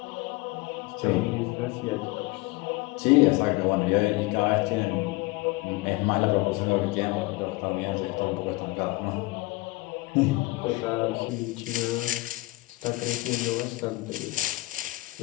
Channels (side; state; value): right; quieter; 22.0 dB